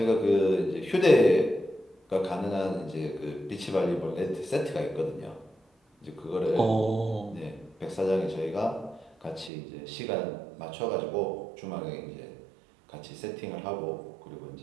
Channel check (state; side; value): drops out; left; at 9.5 s